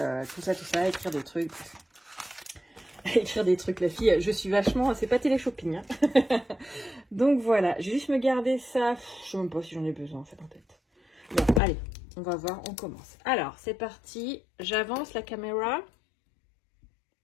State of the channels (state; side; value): drops out; right; at 11.6 s